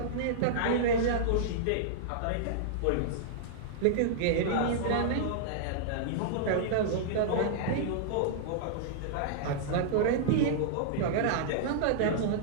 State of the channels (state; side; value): different; both; correlation -0.02